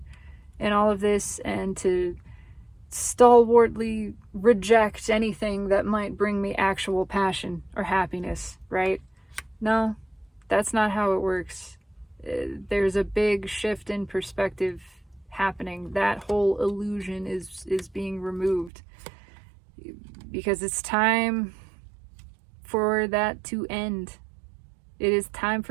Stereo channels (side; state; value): left; drops out; at 18.7 s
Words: and all of this, and to stalwartly reject anything that might bring me actual passion or happiness, right? No, that's not how it works. There's a big shift in perspective happening. That whole illusion is being removed, because it's time for that to end. It is time